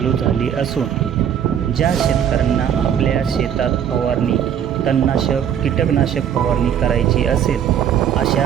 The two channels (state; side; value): quieter; left; 9.1 dB